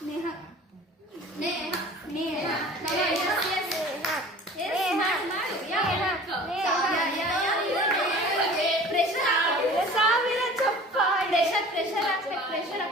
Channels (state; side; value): normal; both; correlation 0.44